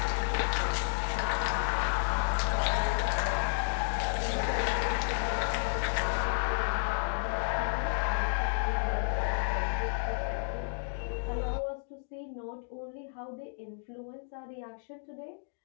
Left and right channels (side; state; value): right; silent; digital silence